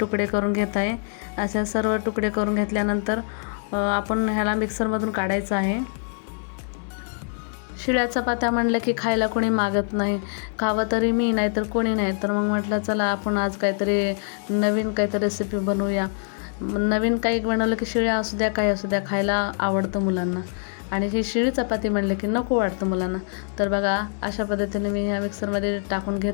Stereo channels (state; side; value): silent; right; 56 dB below the other